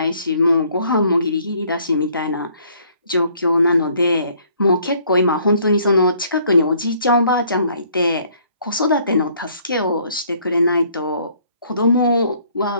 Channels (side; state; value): both; inverted; correlation -0.62